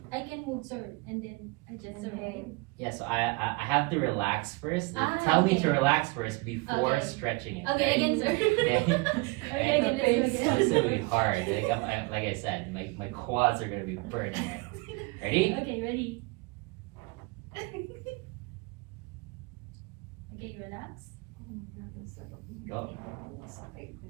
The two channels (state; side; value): quieter; left; 27.2 dB